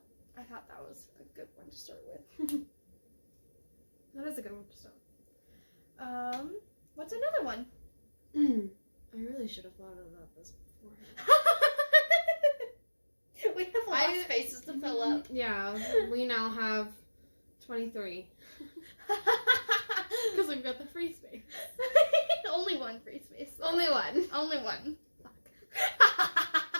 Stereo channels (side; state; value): both; inverted; correlation -1.00